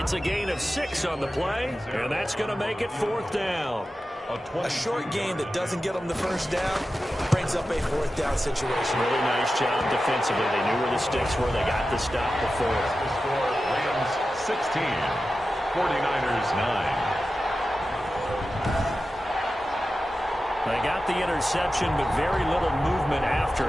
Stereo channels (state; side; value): normal; both; correlation 0.93